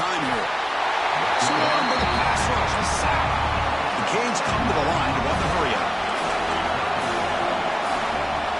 here. Swarmed by the pass rush. He's sacked. The Canes come to the line to run the hurry up.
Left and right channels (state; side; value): identical; both; correlation 1.00